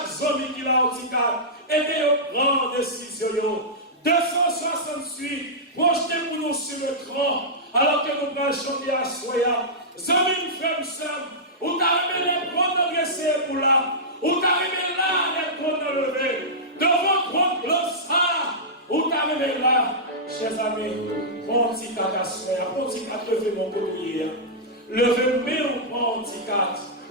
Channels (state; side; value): normal; both; correlation -0.13